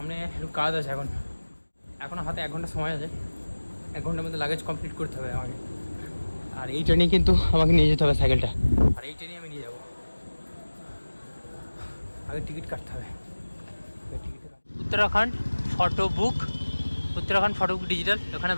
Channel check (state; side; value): inverted; both; correlation -1.00